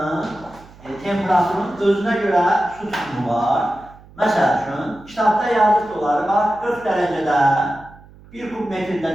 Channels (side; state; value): right; noise; hum, 23 dB below the sound